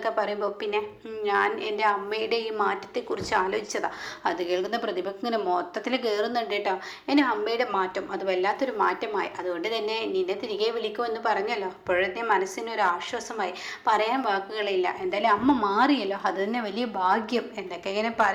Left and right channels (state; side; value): identical; both; correlation 1.00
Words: പറയുമ്പോൾ പിന്നെ ഞാൻ എൻ്റെ അമ്മയുടെ ഈ മാറ്റത്തെക്കുറിച്ച് ആലോചിച്ചതാണ് അത് കേൾക്കുന്ന പ്രതിഭയ്ക്ക് ഇങ്ങനെ മൊത്തത്തിൽ കയറുന്നുണ്ട് കേട്ടോ എൻ്റെ അമ്മയുടെ മാറ്റം അത് വല്ലാത്തൊരു മാറ്റമായി അതുകൊണ്ട് തന്നെ നിന്നെ തിരികെ വിളിക്കുമെന്ന് പറഞ്ഞല്ലോ അപ്പോഴത്തെ മനസ്സിനൊരു ആശ്വാസമായി പറയാൻ വാക്കുകളില്ല എന്തായാലും അമ്മ മാറിയല്ലോ അത് തന്നെ വലിയ ഭാഗ്യം എന്നൊക്കെ ഇങ്ങനെ